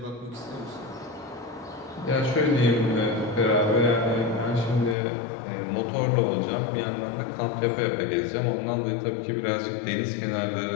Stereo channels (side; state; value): right; drops out; at 5.0 s